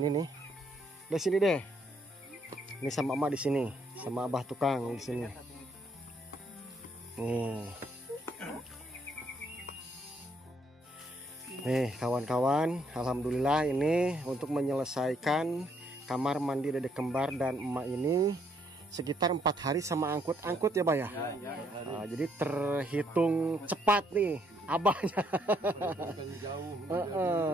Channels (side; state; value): both; normal; correlation 0.71